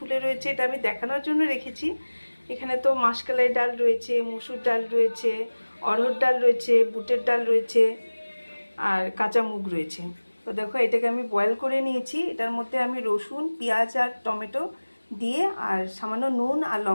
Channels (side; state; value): both; inverted; correlation -1.00